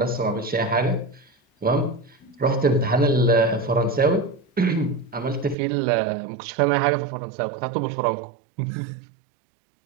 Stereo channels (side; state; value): left; drops out; at 5.6 s